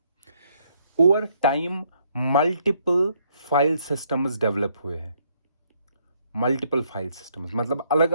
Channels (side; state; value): both; inverted; correlation -0.70